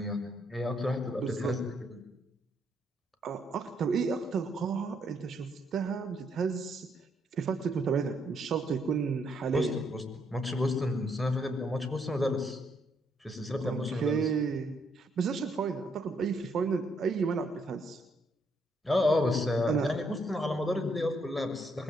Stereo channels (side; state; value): both; normal; correlation 0.73